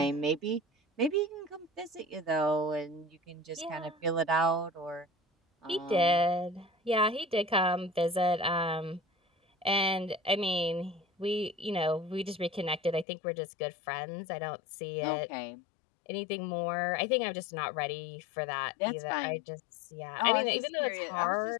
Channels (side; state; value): right; drops out; at 13.1 s